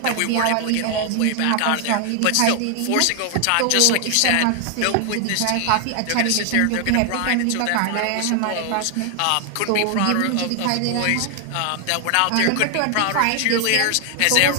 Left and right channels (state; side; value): different; both; correlation 0.00